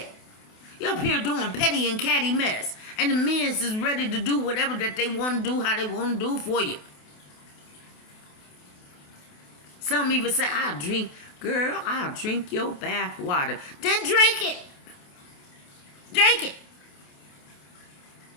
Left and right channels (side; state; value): right; late; 28 ms